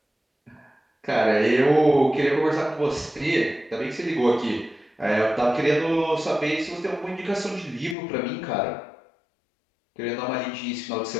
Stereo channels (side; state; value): right; drops out; at 8.0 s